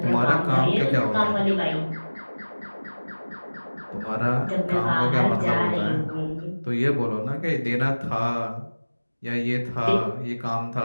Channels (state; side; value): inverted; both; correlation -1.00